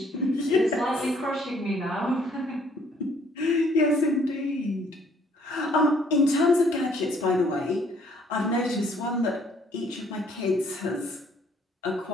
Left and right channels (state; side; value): normal; both; correlation 0.63